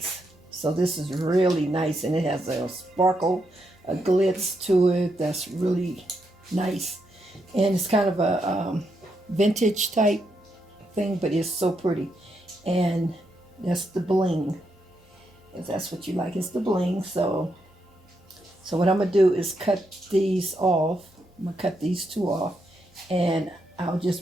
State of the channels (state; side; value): normal; both; correlation 0.81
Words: So this is really nice, and it has a sparkle, a glitz to it that's really nice. And it's kind of a vintage type thing, but it's so pretty. And that's the bling, if that's what you like. It's the bling. So what I'm going to do is cut these off. I'm going to cut these two off, and I'll